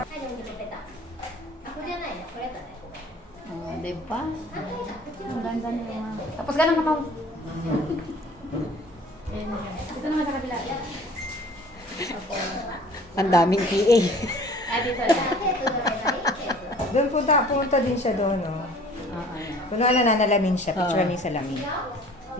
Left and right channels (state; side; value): normal; both; correlation 0.49